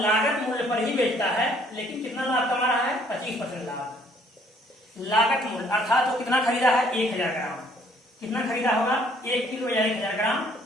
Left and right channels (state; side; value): normal; both; correlation 0.62